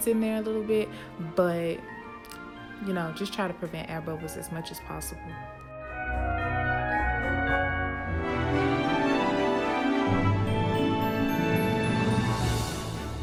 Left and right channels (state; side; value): identical; both; correlation 1.00